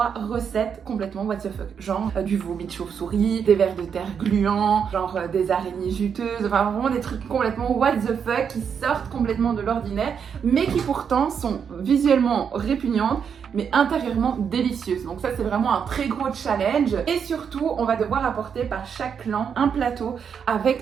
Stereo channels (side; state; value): left; quieter; 7.2 dB